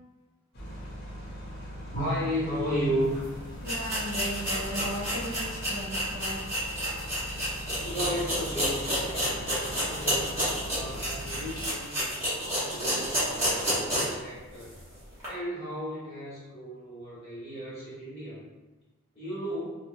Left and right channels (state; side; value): normal; both; correlation 0.25